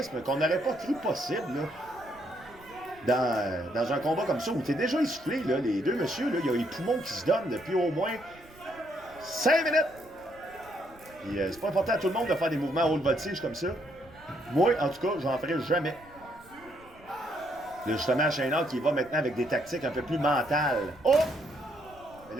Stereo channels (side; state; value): right; noise; rumble, 24 dB below the sound